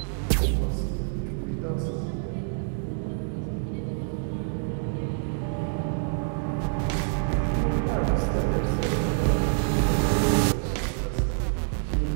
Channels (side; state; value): left; silent; digital silence